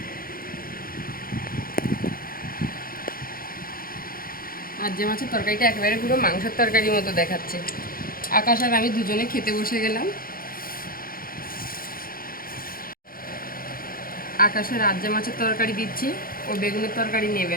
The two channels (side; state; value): right; late; 0.42 ms